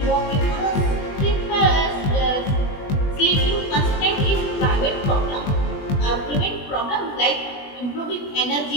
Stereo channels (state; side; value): late; right; 20 ms